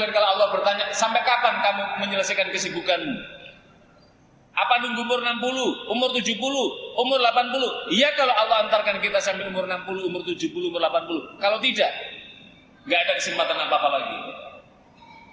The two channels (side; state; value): both; identical; correlation 1.00